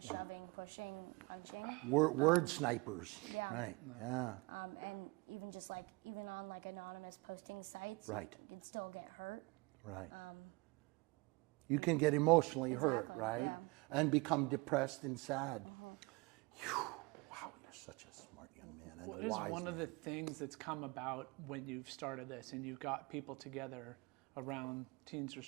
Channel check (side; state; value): left; quieter; 25.5 dB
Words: shoving, pushing, punching. Word snipers, Yeah. right? Yeah, And even just even on anonymous posting sites, right, you'd still get hurt. right. You can get emotionally hurt, right? Yeah. And become depressed and sad. Whew. Wow, you're such a smart young man. And What a is wise one of man. the things that's come about when you've started this and you've got people together around Teens